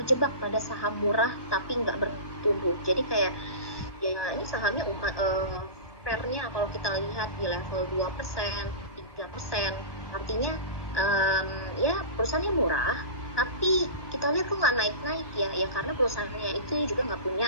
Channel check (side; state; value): right; late; 1.2 ms